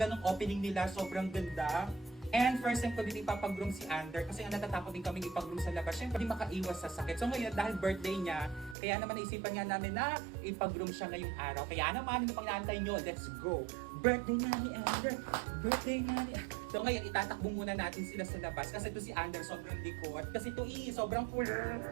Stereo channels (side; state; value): left; drops out; at 8.8 s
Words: nung opening nila, sobrang ganda. And first time ko dito ipapag-groom si Ander kasi nga natatakot din kami ipag-groom sa labas. Siyempre, hindi makaiwas sa sakit. So ngayon, dahil birthday niya, kaya naman naisipan nga namin na ipag-groom siya ngayong araw. Kaya naman, ano pang naantay nyo? Let's go! Birthday na ni Ander! Birthday na ni Ander! So ngayon, itatakbo muna natin sila sa labas kasi ito si Ander sobrang likod. Kasi ito sobrang cool.